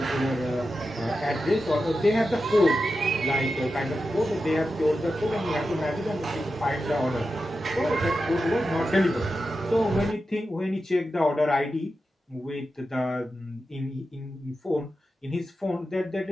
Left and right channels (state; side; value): normal; both; correlation 0.90